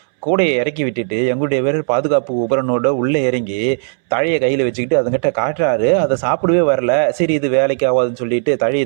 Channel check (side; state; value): left; silent; 69 dB below the other